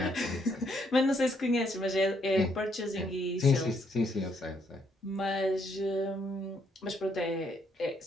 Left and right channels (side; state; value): both; normal; correlation 0.72